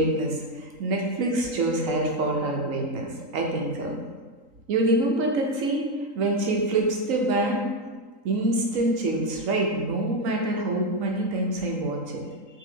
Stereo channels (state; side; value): late; left; 3.8 ms